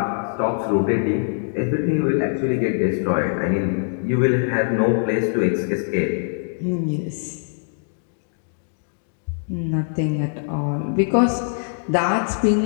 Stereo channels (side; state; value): right; silent; digital silence